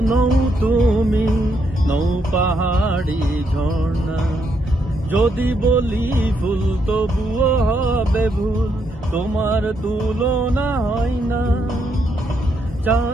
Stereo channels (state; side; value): normal; both; correlation 0.77